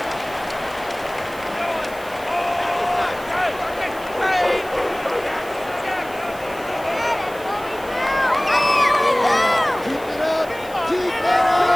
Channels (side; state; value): right; noise; hiss, 20 dB below the sound